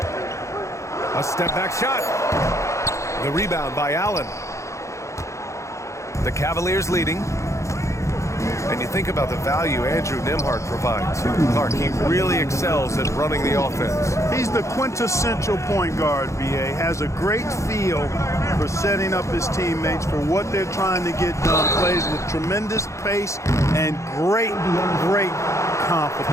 A step-back shot. The rebound by Allen. The Cavaliers leading. And you think about the value Andrew Nembhard provides. Clark, he really excels at running the offense. He's the quintessential point guard, B.A. Has a great feel for setting up his teammates for what they're trying to get done. Plays with tremendous pace and great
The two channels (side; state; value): right; late; 0.14 ms